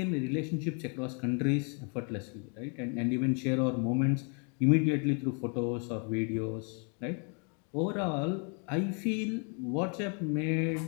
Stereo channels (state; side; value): quieter; right; 38.7 dB